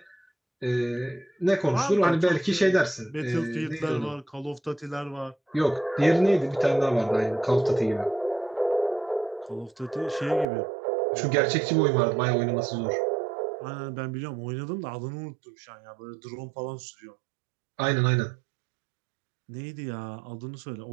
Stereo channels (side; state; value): left; drops out; at 10.5 s